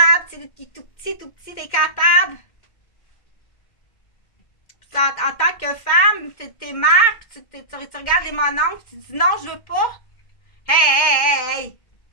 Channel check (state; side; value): late; right; 2.1 ms